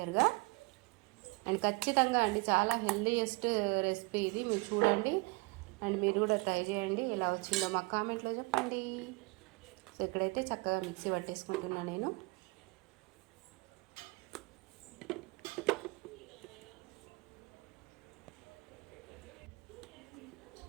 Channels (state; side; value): quieter; left; 27.7 dB